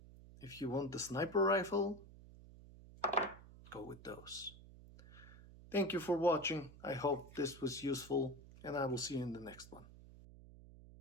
if you want the sniper rifle, go with those. Thank you for watching. I hope this was useful, and I will see you in the next one.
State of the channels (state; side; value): noise; right; hum, 18 dB below the sound